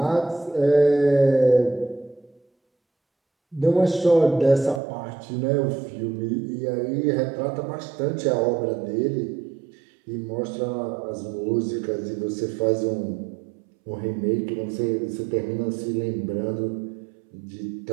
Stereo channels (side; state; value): left; drops out; at 4.8 s